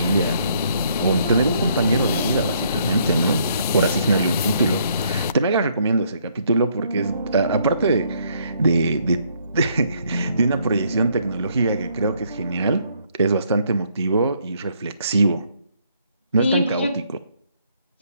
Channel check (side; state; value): both; inverted; correlation -0.68